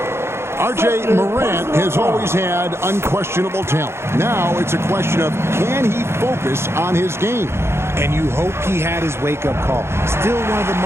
R.J. Morant has always had unquestionable talent. Now it's a question of, can he focus on his game? And you hope he had his wake-up call. Still one of the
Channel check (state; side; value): late; left; 0.12 ms